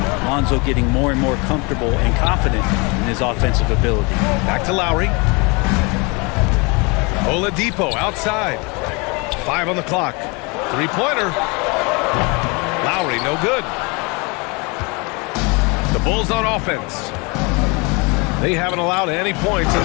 Lonzo getting more and more comfortable and confident in his offensive ability. Back to Lowry. Oladipo outside. 5 on the clock. Three-pointer. Lowry, no good. The Bulls on offense. They haven't allowed any points in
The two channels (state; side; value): quieter; right; 29.3 dB